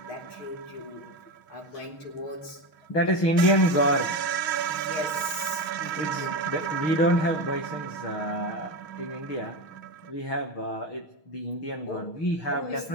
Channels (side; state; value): right; late; 6.2 ms